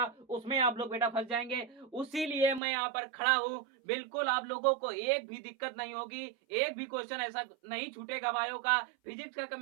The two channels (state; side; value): drops out; left; at 2.6 s